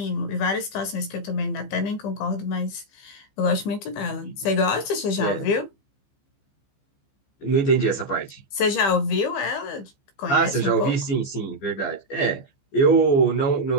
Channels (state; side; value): late; right; 15 ms